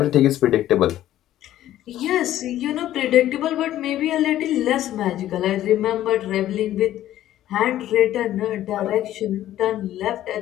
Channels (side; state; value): right; quieter; 13.1 dB